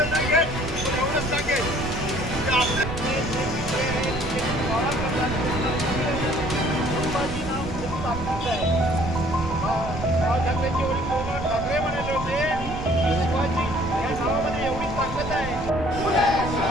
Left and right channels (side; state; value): right; noise; rumble, 10 dB below the sound